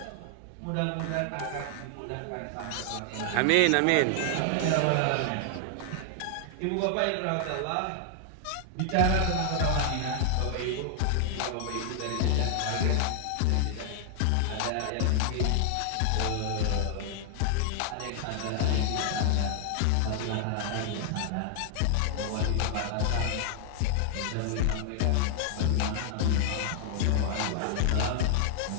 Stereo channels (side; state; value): both; different; correlation 0.00